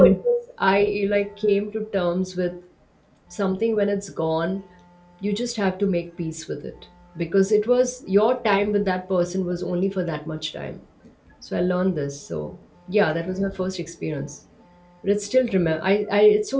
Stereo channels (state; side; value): identical; both; correlation 1.00